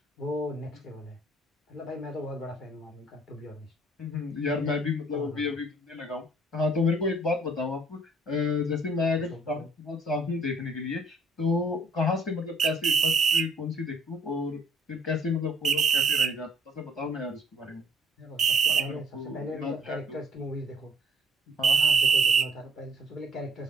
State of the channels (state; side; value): normal; both; correlation 0.60